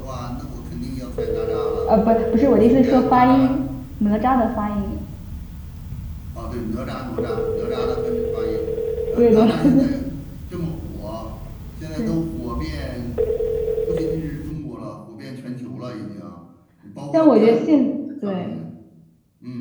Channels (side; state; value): both; identical; correlation 1.00